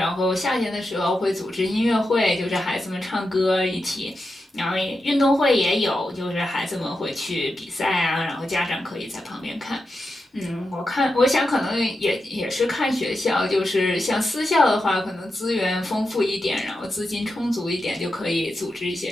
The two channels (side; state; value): both; normal; correlation 0.88